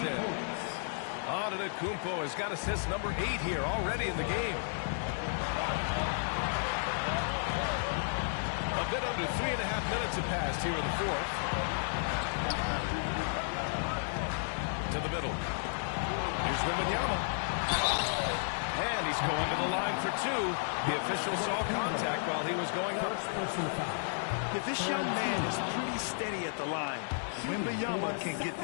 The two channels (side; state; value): right; silent; digital silence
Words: in. Antetokounmpo has got assist number 8 here already in the game. A bit under 3.5 minutes have passed here in the fourth. To the middle. Here's Wembanyama. And he's going to the line for 2. The official saw contact while he was going up. If this young man is pretty steady at the line, Wembanyama can get